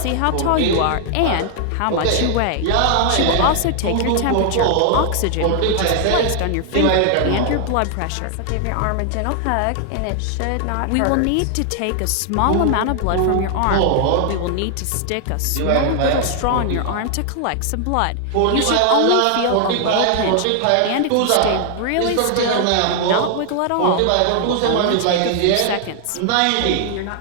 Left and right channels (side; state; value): both; different; correlation 0.00